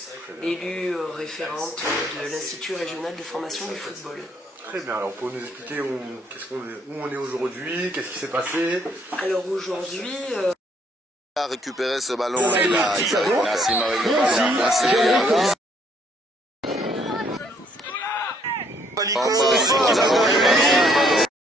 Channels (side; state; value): both; normal; correlation 0.67